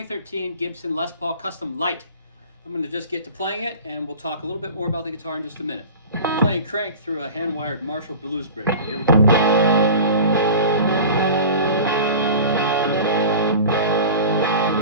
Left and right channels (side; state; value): both; inverted; correlation -0.36